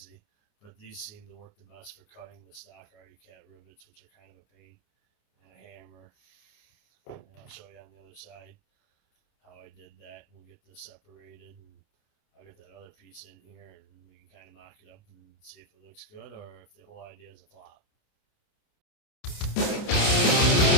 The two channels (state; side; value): late; right; 29 ms